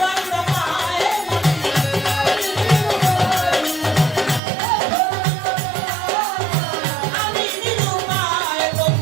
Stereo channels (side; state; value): left; drops out; at 4.4 s